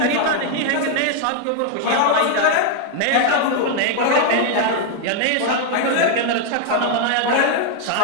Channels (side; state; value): both; different; correlation 0.00